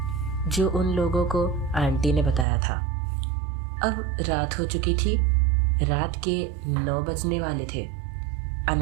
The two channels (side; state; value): left; drops out; at 2.5 s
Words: जो उन लोगों को आंटी ने बताया था। अब रात हो चुकी थी। रात के 9 बजने वाले थे।